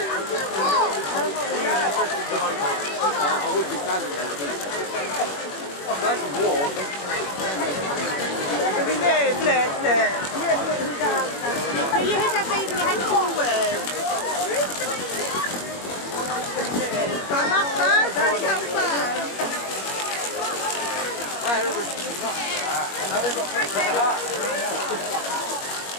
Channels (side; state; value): right; late; 21 ms